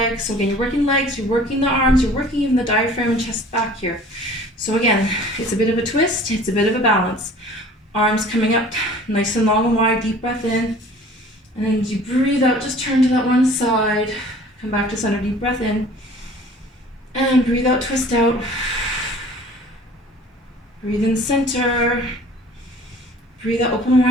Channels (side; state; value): both; normal; correlation 0.48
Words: So again, you're working legs, you're working the arms, you're working even the diaphragm and chest back here. So again, it's a bit of a twist, it's a bit of a balance. Arms coming up nice and long and wide, deep breath in. And then as you breathe out, just turn to that one side. Come back to center, deep breath in. And breathe out, twist out. Breathe in center. Breathe out, open